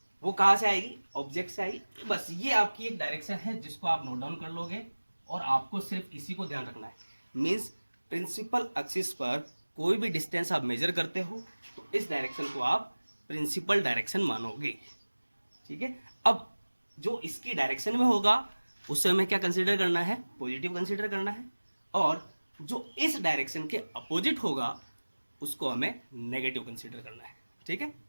वो कहाँ से आएगी, ऑब्जेक्ट से आएगी। बस ये आपकी एक डायरेक्शन है जिसको आप नोट डाउन कर लोगे और आपको सिर्फ इसी को ध्यान रखना है। मीन्स प्रिंसिपल एक्सिस पर कोई भी डिस्टेंस आप मेजर करते हो तो इस डायरेक्शन को आप प्रिंसिपल डायरेक्शन मानोगे, ठीक है। अब जो इसकी डायरेक्शन में होगा उससे हमें क्या कंसीडर करना है, पॉजिटिव कंसीडर करना है, और जो इस डायरेक्शन के अपोजिट होगा उसको हमें नेगेटिव कंसीडर करना है, ठीक है।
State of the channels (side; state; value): both; inverted; correlation -1.00